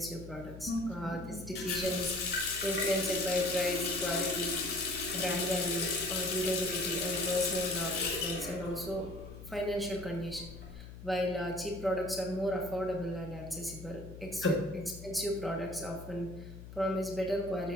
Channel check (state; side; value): noise; left; hum, 13 dB below the sound